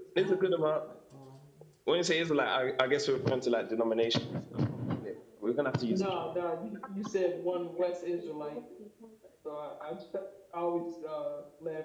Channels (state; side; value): identical; both; correlation 1.00